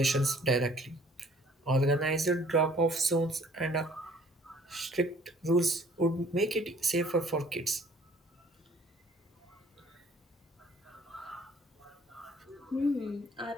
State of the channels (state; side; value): normal; both; correlation 0.56